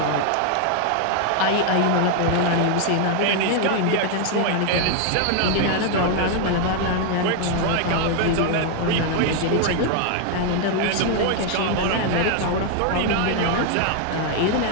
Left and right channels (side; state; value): both; different; correlation 0.00